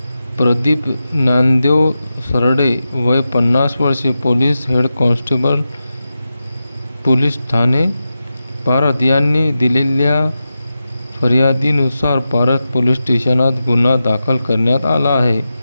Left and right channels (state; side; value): inverted; both; correlation -0.92